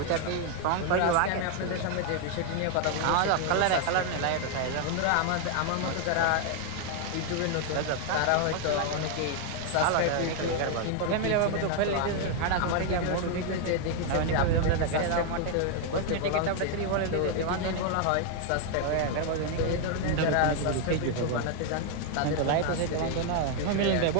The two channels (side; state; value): both; different; correlation 0.00